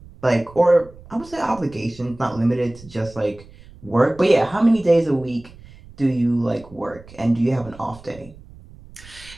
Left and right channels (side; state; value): right; noise; rumble, 21 dB below the sound